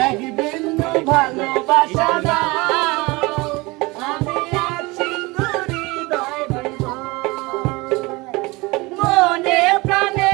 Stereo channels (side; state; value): left; quieter; 23.6 dB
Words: এক বিন্দু ভালোবাসা আমি এক সিন্ধুরি হৃদয় দেব। মনে প্রাণে